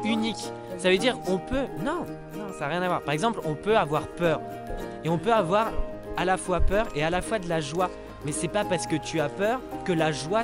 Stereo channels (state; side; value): identical; both; correlation 1.00